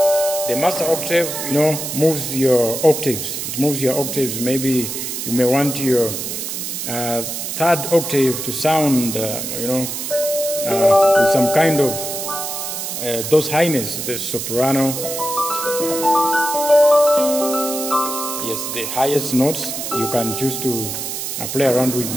The master octave, moves your octaves. It moves your octaves. Maybe you may want your third octave to sound, with some kind of those highness, the soprano. Yes, the highest notes, you can choose to play around with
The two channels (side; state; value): right; noise; hiss, 5 dB below the sound